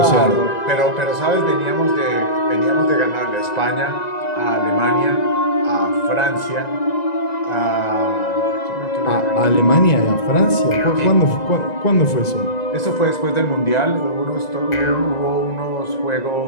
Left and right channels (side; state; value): right; late; 1.9 ms